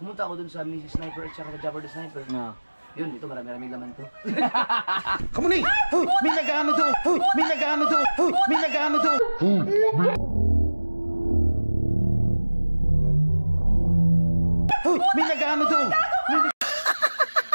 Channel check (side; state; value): both; inverted; correlation -1.00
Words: ako dun sa Mrs. Sniper at saka Jabber the Sniper. Na. Yun, ito marami-rami laman to. Kamunay! Hoy! May nag-ano to! Hoy! May nag-ano to! Hoy! May nag-ano to! Hoy! May nag-ano to!